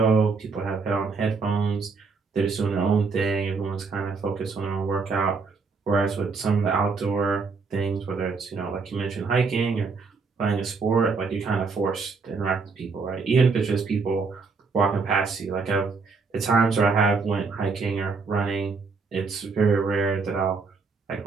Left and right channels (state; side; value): quieter; left; 4.6 dB